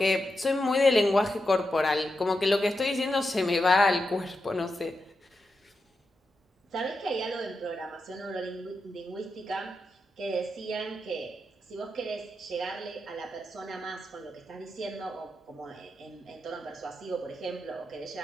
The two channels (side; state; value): both; normal; correlation 0.87